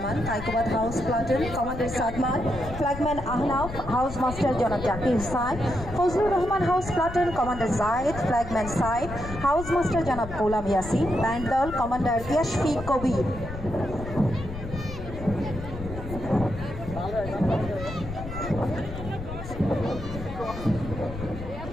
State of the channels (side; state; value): left; noise; rumble, 9 dB below the sound